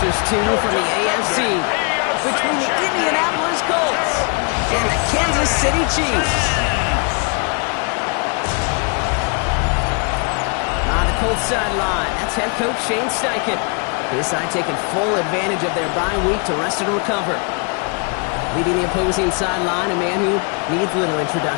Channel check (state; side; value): quieter; right; 35.2 dB